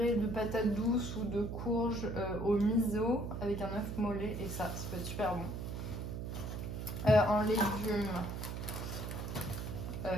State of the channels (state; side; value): noise; right; hum, 5 dB below the sound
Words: de patates douces ou de courges au miso avec un œuf mollet et ça peut être super bon. En légumes,